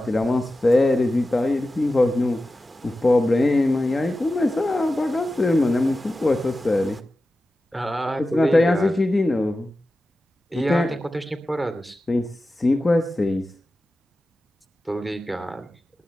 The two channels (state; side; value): normal; both; correlation 0.94